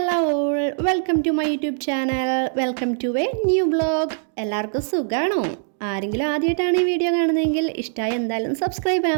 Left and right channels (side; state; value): left; silent; digital silence